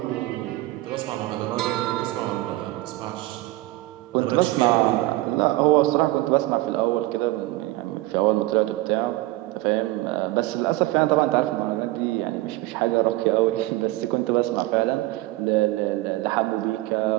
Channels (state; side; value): quieter; left; 18.7 dB